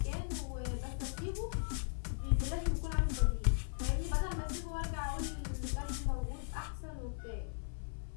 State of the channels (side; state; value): right; silent; 53 dB below the other